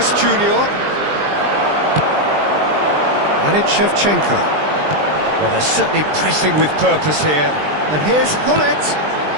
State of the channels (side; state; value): left; late; 20 ms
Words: Junior, and it's Shevchenko. Well, they're certainly pressing with purpose here. And here's Hullet.